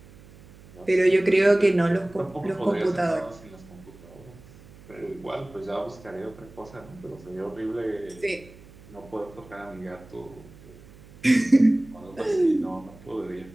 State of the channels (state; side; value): noise; right; hum, 22 dB below the sound